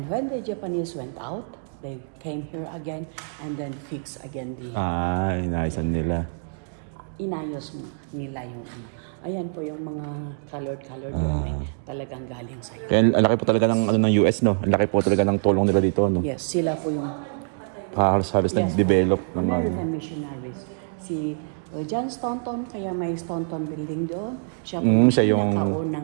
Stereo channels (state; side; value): silent; left; digital silence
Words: when the Japanese went out, they came here again and then fixed again the... Inaayasan nila. Inayos nila yung ano. Ayan po yung mga colored talagang galing sa Kaya ang laki po talaga ng, ng US, no? Ang laki po talaga ng tulong nila dito, no? Yes, sila po yung... Halos nag-develop ng American missionaries. Si John Staunton, kaya may Staunton building doon. Siya yung